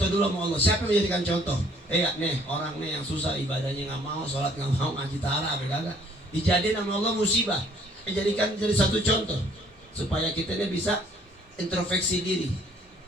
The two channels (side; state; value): both; normal; correlation 0.61